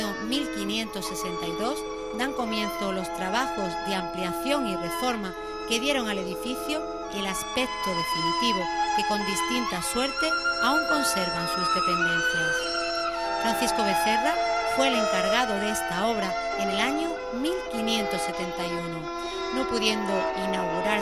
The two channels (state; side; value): identical; both; correlation 1.00